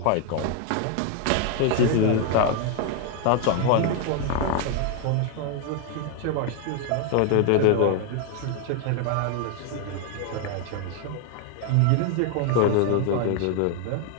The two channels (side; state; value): both; different; correlation 0.00